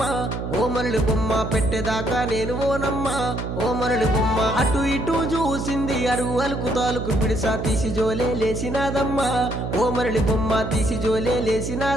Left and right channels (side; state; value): right; noise; hum, 4 dB below the sound